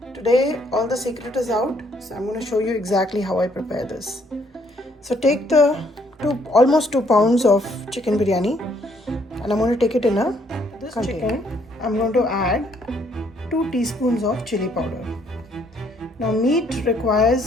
Today all the secret is out, so I'm going to show you exactly how I prepare this. So take the almost 2 pounds of chicken biryani, and I'm going to take it in a container. I'm going to add 2 teaspoons of chili powder. Now meat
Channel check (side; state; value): both; normal; correlation 0.67